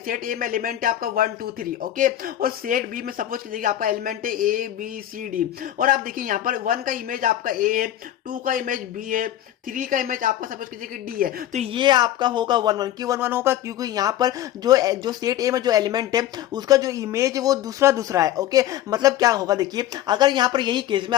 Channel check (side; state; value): right; quieter; 12.4 dB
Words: ए में एलिमेंट है आपका 1, 2, 3। ओके, और सेट बी में सपोज कीजिए आपका एलिमेंट है ए बी सी डी। और आप देखिए यहाँ पर 1 का इमेज आपका ए है, 2 का इमेज बी है, 3 का इमेज आपका सपोज कीजिए कि डी है। तो ये आपका होगा 1-1। क्यों 1-1 होगा, क्योंकि यहाँ पर जो सेट ए में जो एलिमेंट है उसका जो इमेज है वो दूसरा है। ओके, मतलब क्या होगा, देखिए अगर यहाँ पर यही केस में